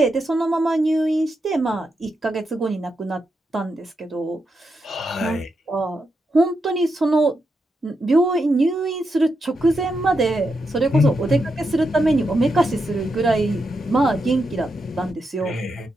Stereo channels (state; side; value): normal; both; correlation 0.84